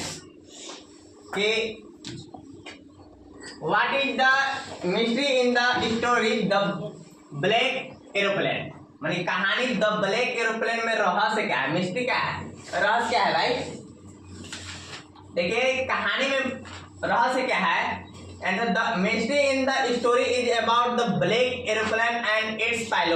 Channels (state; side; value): identical; both; correlation 1.00